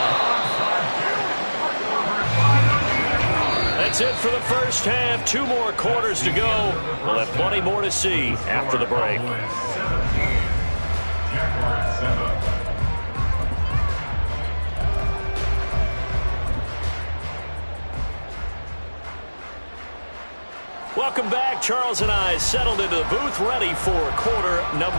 That's it for the first half. 2 more quarters to go. We'll have plenty more to see after the break. Welcome back. Charles and I settled into the booth ready for quarter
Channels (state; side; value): inverted; both; correlation -1.00